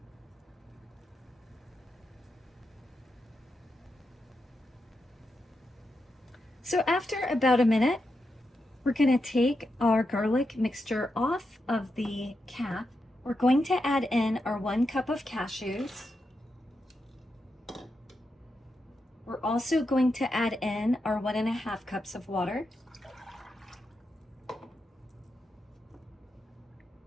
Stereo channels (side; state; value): both; normal; correlation 0.86